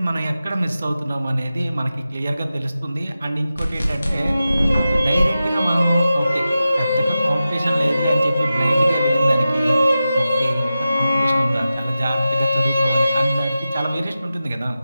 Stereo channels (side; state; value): both; inverted; correlation -0.93